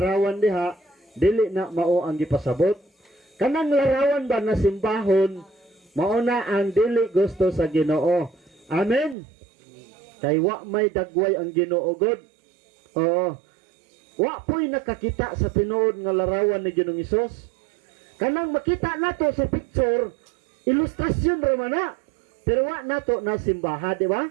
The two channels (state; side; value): drops out; left; at 9.2 s